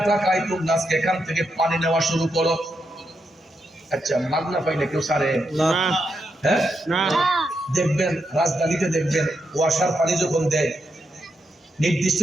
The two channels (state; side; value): normal; both; correlation 0.83